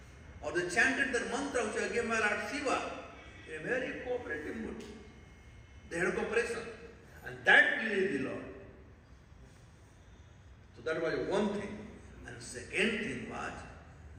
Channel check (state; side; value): identical; both; correlation 1.00